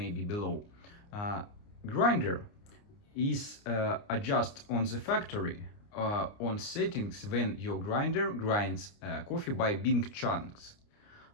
below. Grinder is adjust on the factory on settings when your grinder grinds coffee by big chunks.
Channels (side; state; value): right; late; 29 ms